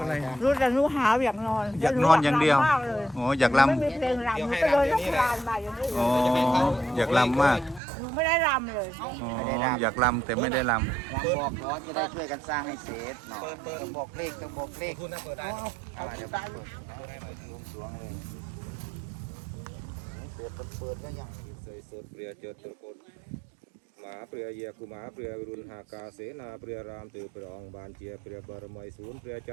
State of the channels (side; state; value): left; drops out; at 7.8 s